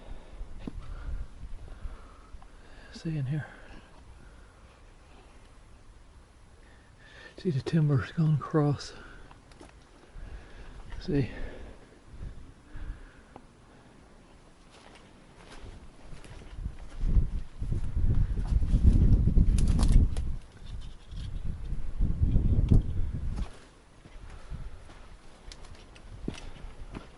See in here. See the timbers going across. See.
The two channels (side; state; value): both; identical; correlation 1.00